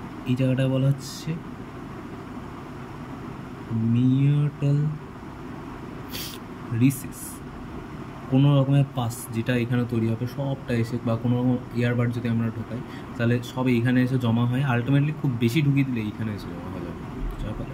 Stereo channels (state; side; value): identical; both; correlation 1.00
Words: এই জায়গাটা বলা হচ্ছে মিয়েটাল রিসিস। কোনো রকমের পাস যেটা এখানে তৈরি হবে সবটা এসে, বা কোনো রকম ইয়ারবাড যদি আমরা ঢোকাই তাহলে সব এইখানে এসে জমা হয়। আলটিমেটলি খুব বেশি ঢুকিয়ে দিলে এইখানে এসে জমা হয়ে যাবে, যার ফলে